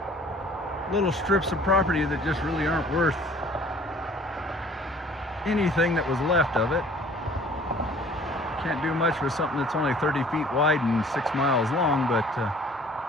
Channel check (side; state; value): both; normal; correlation 0.52